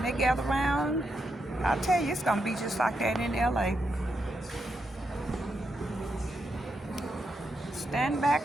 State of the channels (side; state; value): both; normal; correlation 0.83